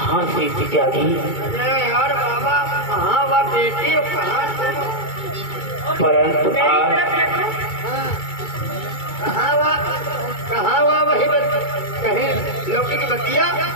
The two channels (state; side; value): late; right; 2.3 ms